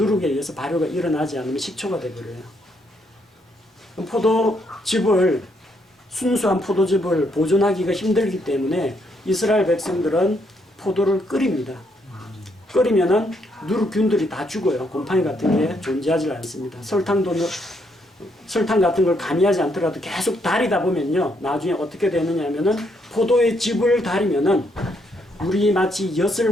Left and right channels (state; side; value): normal; both; correlation 0.74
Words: 의해서 발효가 일어나지 않으면 식초가 되어버려요. 포도즙을, 순수한 포도즙을 보존하기가 힘들기 때문에 이스라엘 백성들은 포도를 끓입니다. 끓이면은 누룩균들이 다 죽어요. 곰팡이 같은 게 존재하지 않습니다. 설탕 같은 걸 가미하지 않더라도 계속 달이다 보면요, 나중에 어떻게 되느냐 하면은 포도의 즙을 달이면은 우리 마치